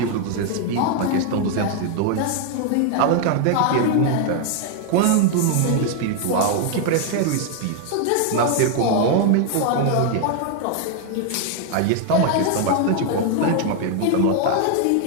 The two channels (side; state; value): both; different; correlation 0.00